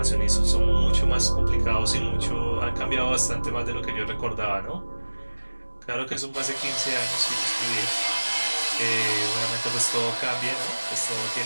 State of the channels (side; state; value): both; inverted; correlation -1.00